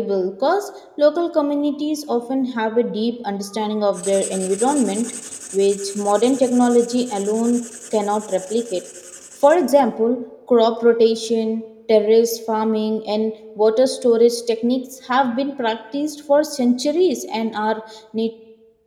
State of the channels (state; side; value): identical; both; correlation 1.00